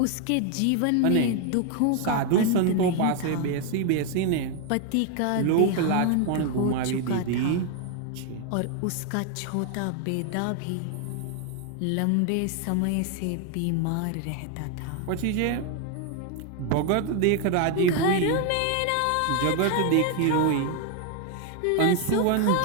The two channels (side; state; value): both; different; correlation 0.01